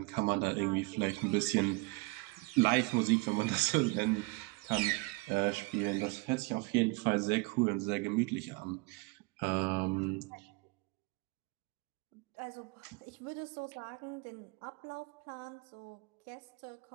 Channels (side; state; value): left; quieter; 26.3 dB